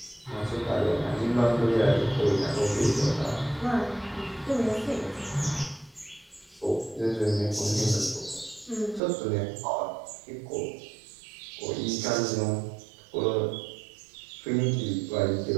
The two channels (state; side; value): drops out; left; at 9.0 s